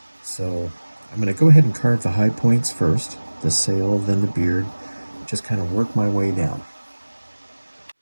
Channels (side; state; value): both; inverted; correlation -1.00